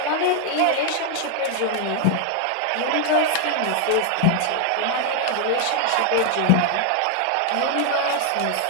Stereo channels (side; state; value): both; different; correlation 0.01